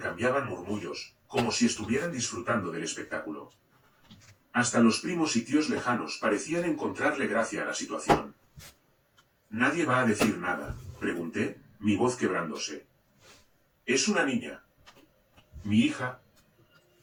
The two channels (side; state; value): both; identical; correlation 1.00